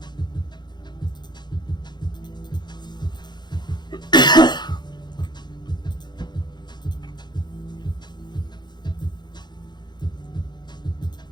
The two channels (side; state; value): right; late; 0.21 ms